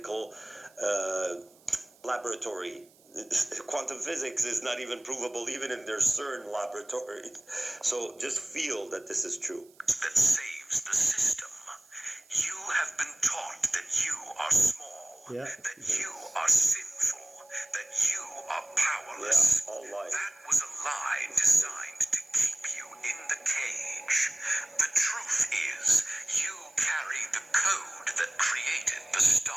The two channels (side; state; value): right; noise; hiss, 29 dB below the sound